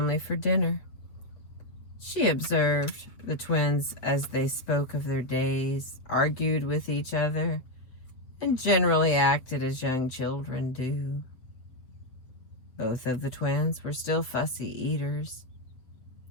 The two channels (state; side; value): late; right; 7.7 ms